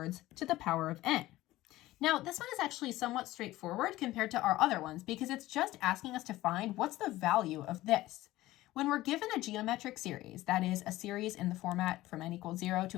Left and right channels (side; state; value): right; quieter; 16.7 dB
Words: to the power of n. Now, this one is actually somewhat straightforward compared to our other ones because it's just asking us to find what's the value of this. When we're given a geometric series, that is a series in the format from n equals 0